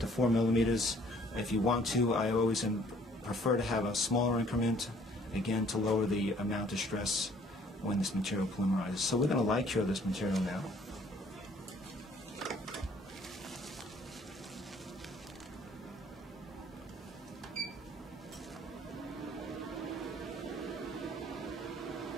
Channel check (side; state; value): both; normal; correlation 0.59